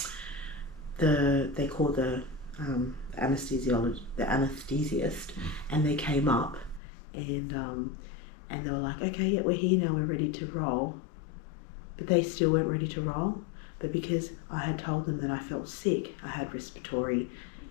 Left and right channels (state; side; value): drops out; right; at 6.8 s